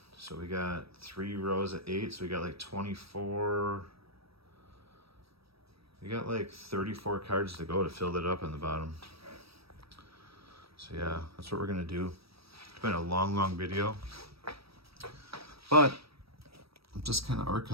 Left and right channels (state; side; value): late; left; 0.77 ms